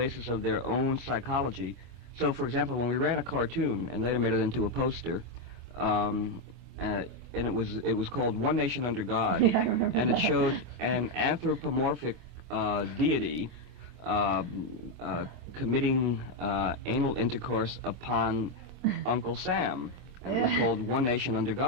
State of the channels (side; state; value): left; late; 24 ms